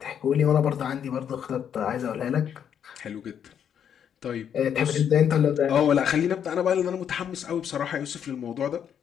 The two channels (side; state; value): right; quieter; 8.6 dB